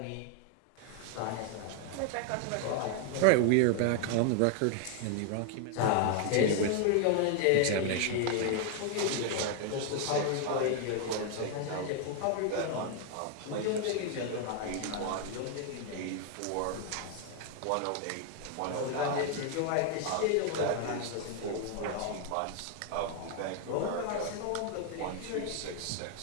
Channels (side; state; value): both; different; correlation 0.00